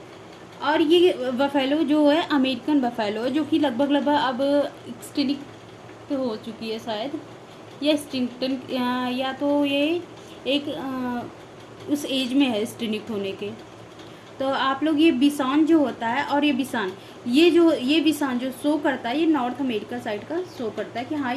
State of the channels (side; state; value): both; identical; correlation 1.00